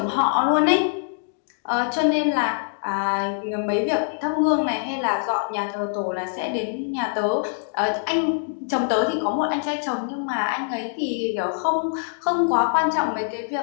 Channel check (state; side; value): silent; right; digital silence